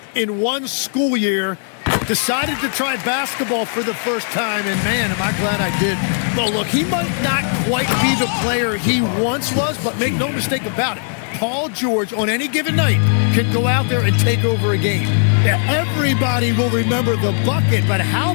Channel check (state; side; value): silent; right; 67 dB below the other